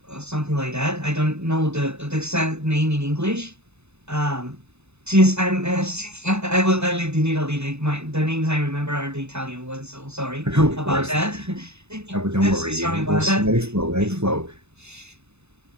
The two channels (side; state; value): left; late; 0.81 ms